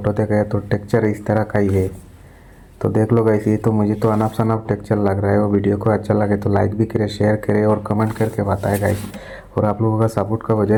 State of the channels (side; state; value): both; identical; correlation 1.00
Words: देखा है तो टेक्चर इस तरह का ही है। तो देख लो गाइस, ये तो मुझे तो अनफ शनफ टेक्चर लग रहा है। वो वीडियो को अच्छा लगे तो लाइक भी करें, शेयर करें और कमेंट करके बताएं गाइस। और आप लोगों का सपोर्ट का